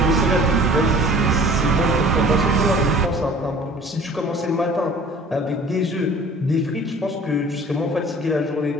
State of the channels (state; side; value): normal; both; correlation 0.48